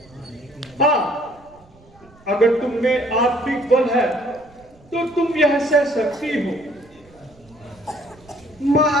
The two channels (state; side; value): noise; right; rumble, 27 dB below the sound